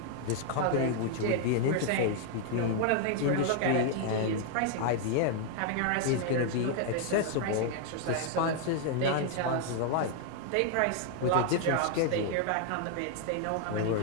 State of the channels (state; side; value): different; both; correlation 0.00